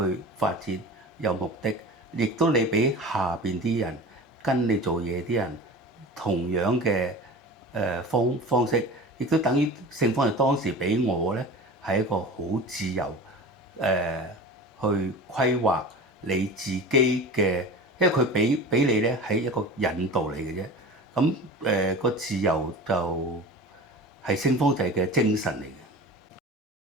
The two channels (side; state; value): both; normal; correlation 0.35